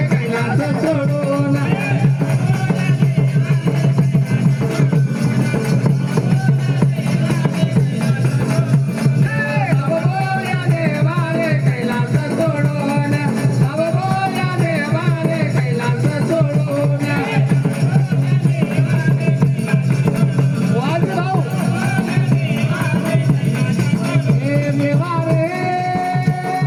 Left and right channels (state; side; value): identical; both; correlation 1.00